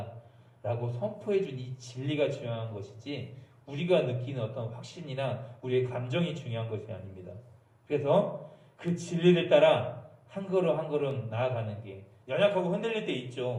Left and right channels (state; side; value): identical; both; correlation 1.00